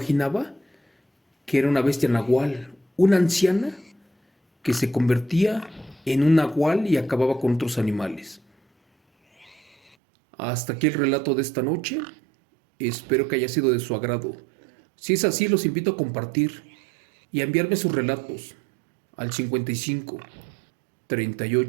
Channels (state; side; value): drops out; left; at 10.0 s